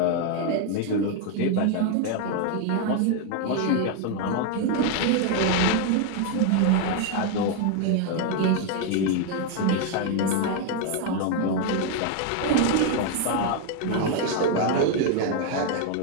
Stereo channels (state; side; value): different; both; correlation 0.00